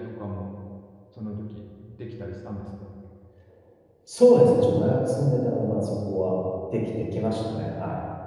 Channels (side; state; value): both; identical; correlation 1.00